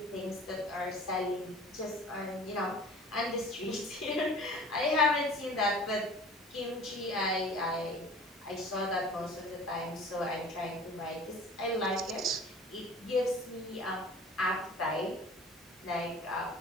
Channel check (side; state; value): both; normal; correlation 0.44